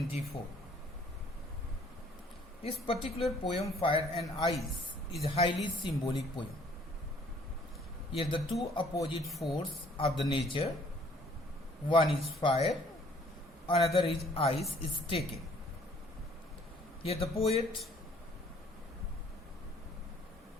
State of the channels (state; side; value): normal; both; correlation 0.59